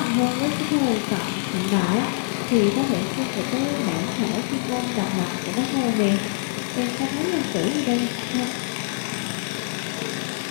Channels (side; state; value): right; silent; digital silence